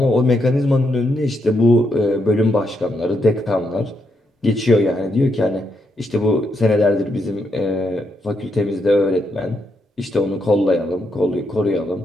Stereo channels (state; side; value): normal; both; correlation 0.80